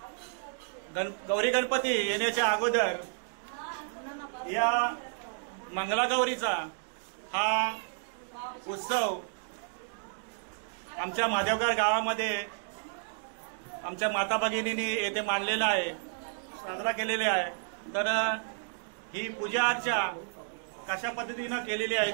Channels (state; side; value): silent; left; digital silence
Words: गौरी गणपती येण्याच्या अगोदर या मंगलागौरीचा हा उत्सव आमच्या माधवगाव गावामध्ये आमच्या माता भगिनींनी येथे मांडलेला आहे, साजरा केलेला आहे. तर ही पूजा अर्चा कशा पद्धतीनं केलेली